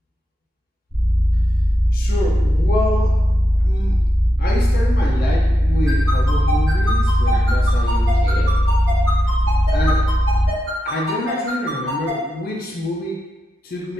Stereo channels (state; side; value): normal; both; correlation 0.87